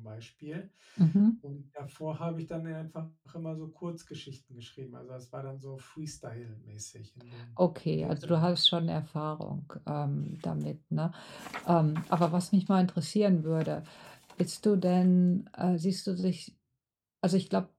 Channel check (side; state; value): both; identical; correlation 1.00